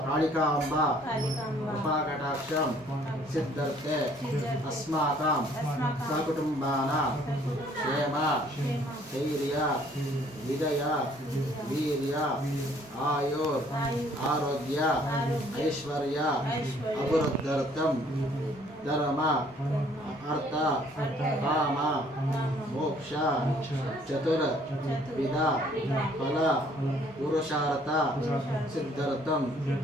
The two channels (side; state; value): both; normal; correlation 0.60